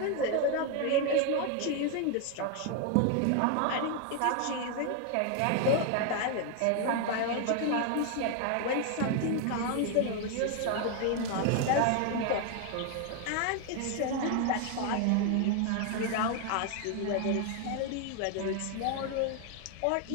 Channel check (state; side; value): different; both; correlation 0.01